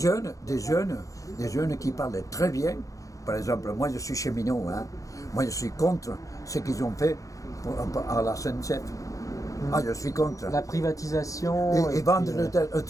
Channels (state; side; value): late; right; 0.16 ms